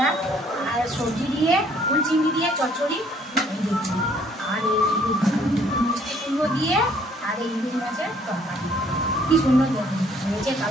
না, আর সবজি দিয়ে ফুল চিংড়ি দিয়ে চচ্চড়ি, আর এই মিষ্টি কুমড়ো দিয়ে, আর এই ইলিশ মাছের তরকারি। কি সুন্দর দেখুন হয়েছে,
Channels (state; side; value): normal; both; correlation 0.62